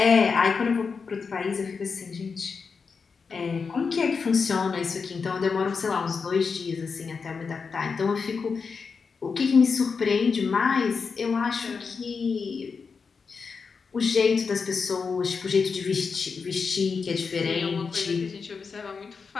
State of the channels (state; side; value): quieter; right; 5.3 dB